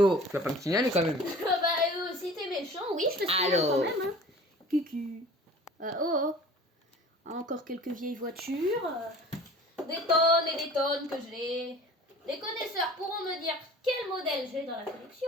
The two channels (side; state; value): both; normal; correlation 0.44